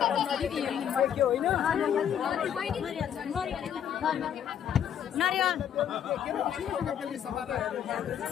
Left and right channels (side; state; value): right; quieter; 9.1 dB